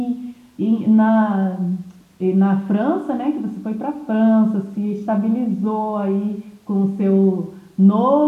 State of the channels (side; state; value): both; identical; correlation 1.00